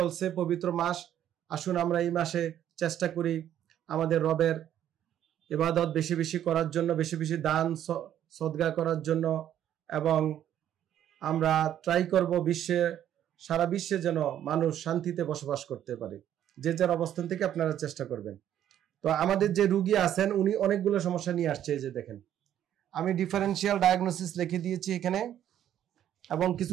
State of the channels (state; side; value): quieter; left; 10.9 dB